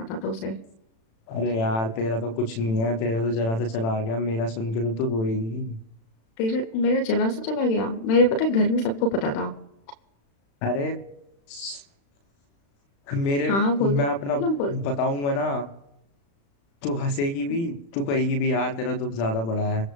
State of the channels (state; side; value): late; right; 36 ms